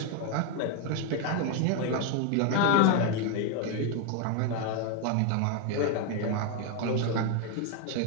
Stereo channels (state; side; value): different; both; correlation 0.01